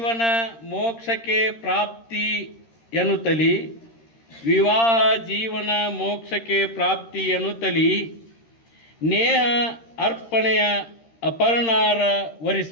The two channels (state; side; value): late; right; 13 ms